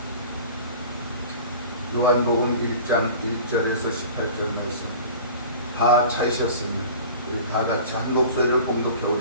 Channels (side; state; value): both; inverted; correlation -0.40